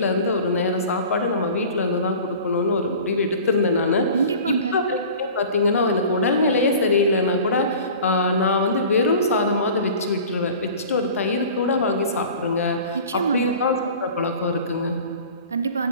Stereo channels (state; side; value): inverted; both; correlation -0.41